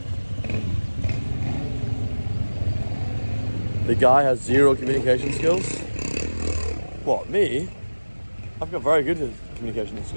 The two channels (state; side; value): inverted; both; correlation -1.00